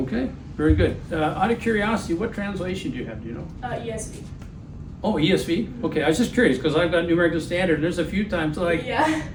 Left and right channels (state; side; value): identical; both; correlation 1.00